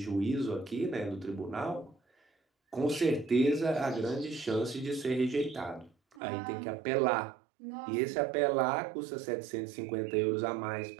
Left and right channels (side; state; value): left; drops out; at 6.2 s